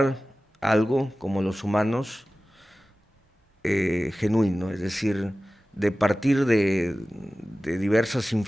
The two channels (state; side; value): normal; both; correlation 0.96